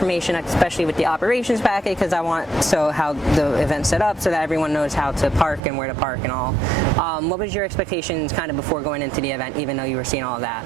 especially with the operations packet, because I want how the event's set up so that everyone knows how to park and where to park and all. What was your expectations kind of before going into the event, even though you were seeing all of that?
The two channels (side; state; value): left; drops out; at 5.6 s